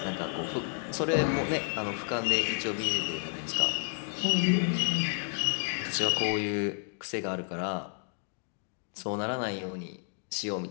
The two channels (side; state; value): right; silent; 57 dB below the other